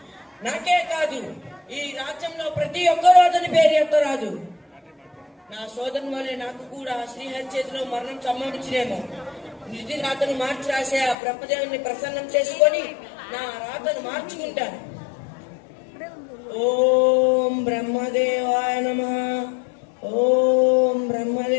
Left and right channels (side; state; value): right; drops out; at 11.2 s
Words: నాకే కాదు, ఈ రాజ్యంలో ప్రతి ఒక్కరూ అతని పేరు ఎత్తరాదు. నా సోదరుని వల్లే నాకు కూడా శ్రీహరి చేతిలో మరణం సంభవించినేమో. నిధి రాతను మార్చి రాసే ఆ బ్రహ్మదేవుని ప్రసన్నం చేసుకొని నా రాతను మార్చుకుంటాను. ఓం బ్రహ్మదేవాయ నమః, ఓం